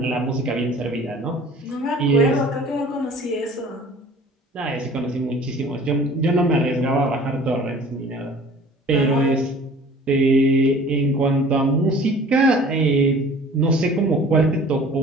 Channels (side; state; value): both; normal; correlation 0.47